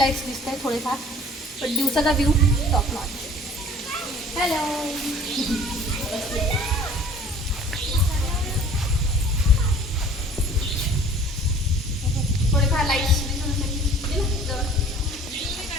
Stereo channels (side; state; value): both; normal; correlation 0.50